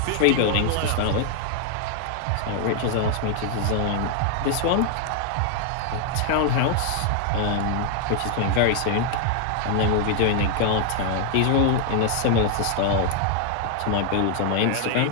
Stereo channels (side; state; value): both; different; correlation 0.00